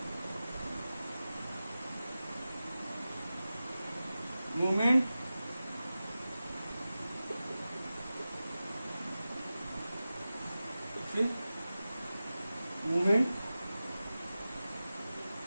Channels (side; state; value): both; inverted; correlation -0.95